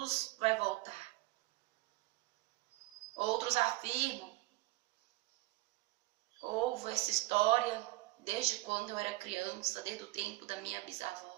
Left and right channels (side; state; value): left; quieter; 20.2 dB